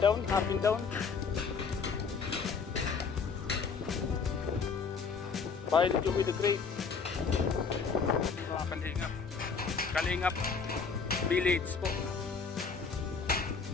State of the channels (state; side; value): quieter; right; 5.4 dB